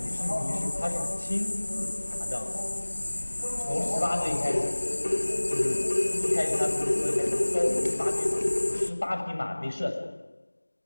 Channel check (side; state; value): both; inverted; correlation -1.00